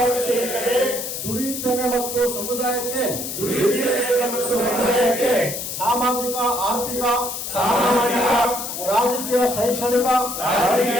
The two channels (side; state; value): left; noise; hiss, 6 dB below the sound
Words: ದುಡಿಯುತ್ತೇನೆ ಮತ್ತು ಸಮುದಾಯಕ್ಕೆ ಸಾಮಾಜಿಕ ಆರ್ಥಿಕ ರಾಜಕೀಯ ಶೈಕ್ಷಣಿಕ